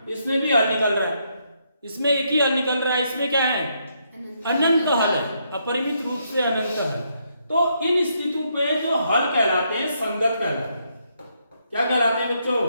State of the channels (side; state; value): both; inverted; correlation -0.76